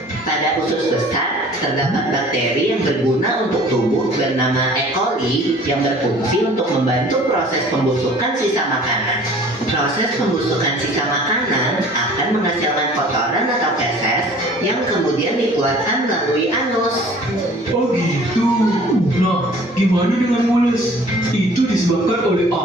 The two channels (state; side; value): normal; both; correlation 0.49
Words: Pada usus besar, terdapat bakteri yang berguna untuk tubuh bernama E. coli yang berfungsi untuk membantu proses pembusukan sisa makanan. Proses pembusukan sisa makanan akan menghasilkan kotoran atau feses yang kemudian dikeluarkan melalui anus. Oh gitu. Nah, gimana dengan mules? Itu disebabkan oleh